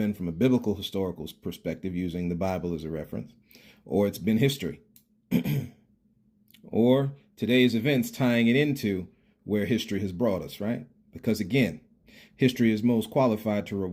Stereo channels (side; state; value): both; identical; correlation 1.00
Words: from a biblical historical perspective, using the Bible as a reference, or it's been history, or today's events tying it into where history has brought us, right? Because again, history is most qualified to